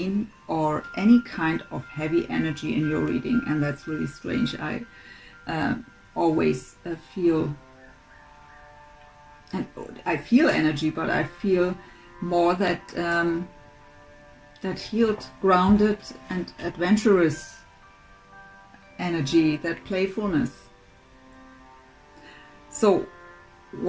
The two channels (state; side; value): identical; both; correlation 1.00